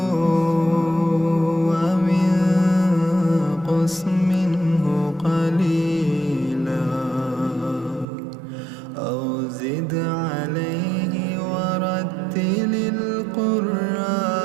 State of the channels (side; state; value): left; drops out; at 8.1 s